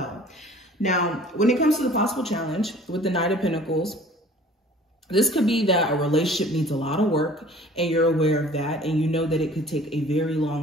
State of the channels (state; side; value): normal; both; correlation 0.49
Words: Now, when it comes to the possible challenge with the Knight of Pentacles, this could be that a relationship needs a lot of work and you're aware of that, and you know that it could take a very